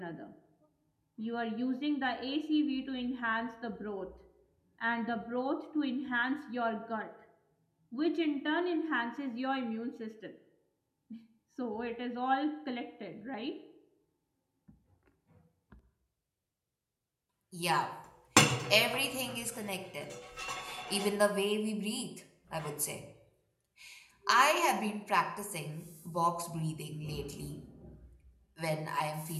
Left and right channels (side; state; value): both; identical; correlation 1.00